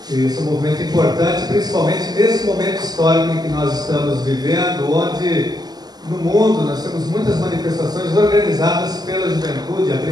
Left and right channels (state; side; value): late; left; 0.20 ms